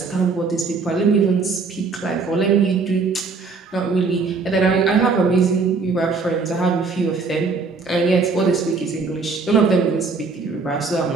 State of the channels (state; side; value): quieter; left; 4.5 dB